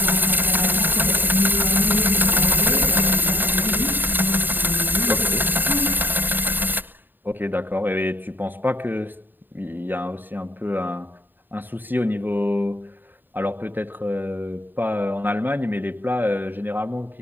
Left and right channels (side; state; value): left; late; 0.092 ms